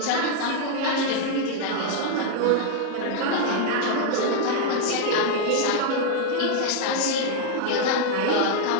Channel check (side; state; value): both; different; correlation 0.00